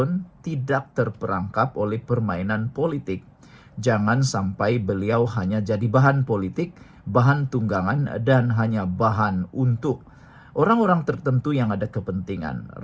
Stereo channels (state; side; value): identical; both; correlation 1.00